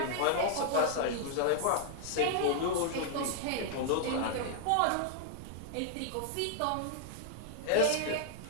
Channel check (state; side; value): different; both; correlation -0.01